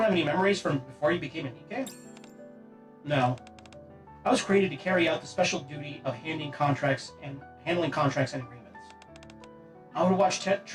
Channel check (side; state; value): both; identical; correlation 1.00